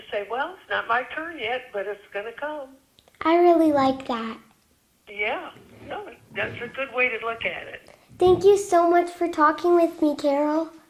say, well, it's not my turn yet, but it's going to come. I really like that. Yeah, no, that's a good way to look at it. Thank you so much for talking with me, Carol.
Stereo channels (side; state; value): both; identical; correlation 1.00